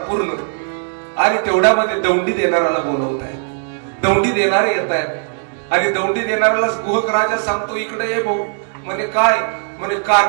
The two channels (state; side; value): silent; left; digital silence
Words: आणि तेवढ्यामध्ये दौंडी देणाऱ्याला बोलवत आहेत. दौंडी देणारे येत आहेत आणि दौंडी देणाऱ्याला गोहक राजा सांगतो, इकडे ये भाऊ. म्हणे काय, म्हणे